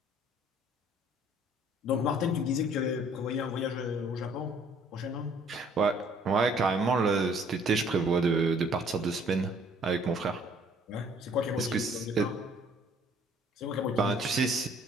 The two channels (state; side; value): normal; both; correlation 0.58